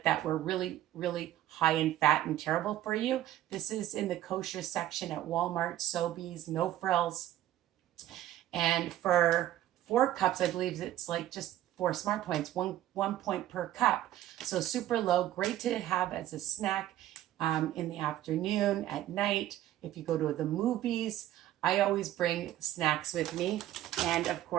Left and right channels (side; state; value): left; quieter; 13.3 dB